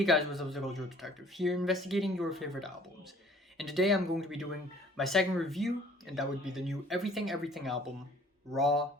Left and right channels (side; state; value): both; normal; correlation 0.54